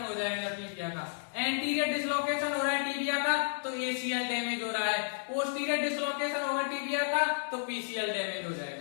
हो जाएगा टीबिया का। एंटीरियर डिसलोकेशन हो रहा है टीबिया का तो ACL डैमेज हो रहा है, पोस्टीरियर डिसलोकेशन होगा टीबिया का तो PCL डैमेज हो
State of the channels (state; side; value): silent; right; digital silence